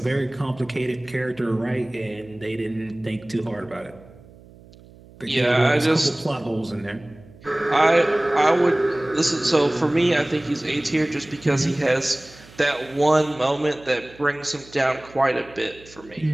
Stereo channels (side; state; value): right; noise; hum, 23 dB below the sound